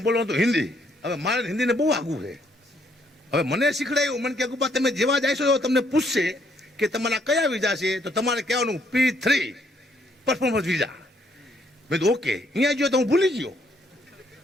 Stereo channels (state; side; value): normal; both; correlation 0.69